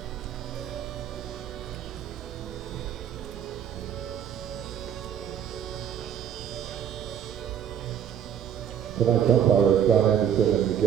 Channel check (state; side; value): quieter; left; 9.1 dB